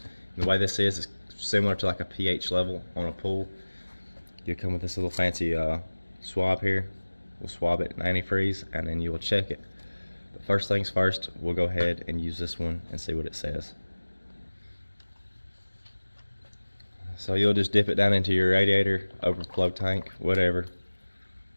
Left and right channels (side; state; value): both; inverted; correlation -1.00